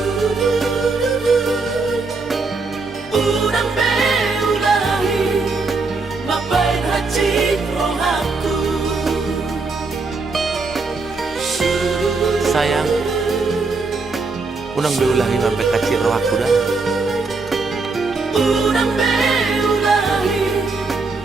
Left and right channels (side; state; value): left; quieter; 4.0 dB